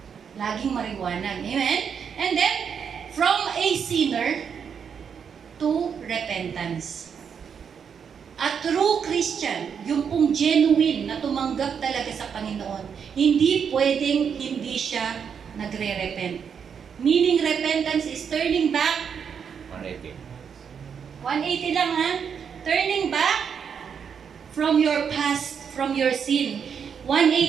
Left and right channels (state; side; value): quieter; left; 7.1 dB